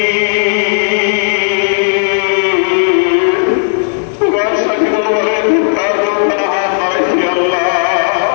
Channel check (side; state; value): right; silent; digital silence